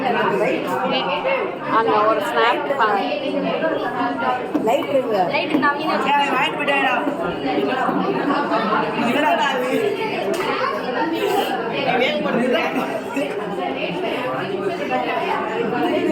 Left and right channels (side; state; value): both; identical; correlation 1.00